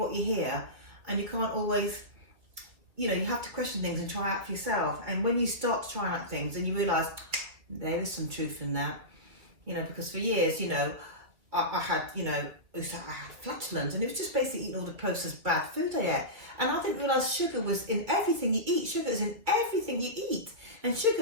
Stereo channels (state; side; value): late; left; 2.7 ms